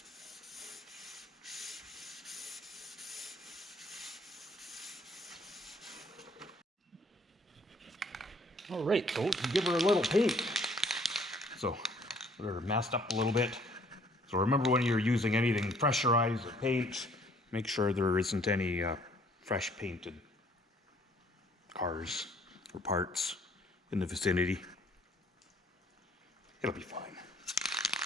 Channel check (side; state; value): both; normal; correlation 0.60